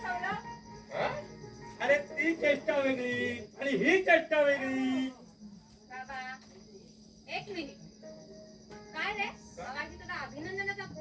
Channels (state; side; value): identical; both; correlation 1.00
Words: हा? अरे ती चेष्टा वेगळी आणि ही चेष्टा वेगळी. बाबा एक मिनिट. काय रे बाबाजी, तुला अभिनंदनाचा